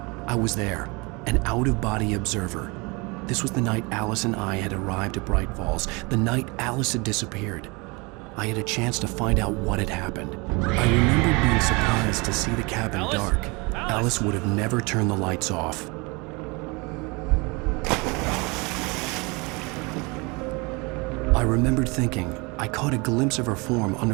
I was there, an out-of-body observer. This was the night Alice and I had arrived at Bright Falls, the night Alice had disappeared. I had a chance to find out what had happened. I remembered being surprised to see the cabin dark. Alice would have never turned the lights off. I remembered thinking I caught a glimpse of her form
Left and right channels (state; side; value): quieter; left; 27.4 dB